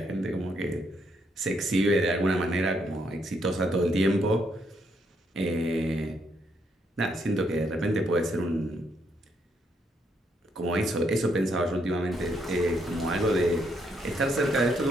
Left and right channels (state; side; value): normal; both; correlation 0.75